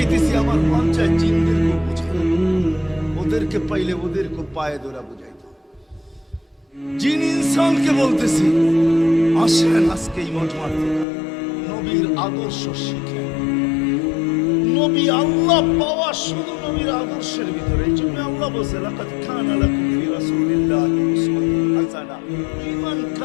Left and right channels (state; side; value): drops out; right; at 11.1 s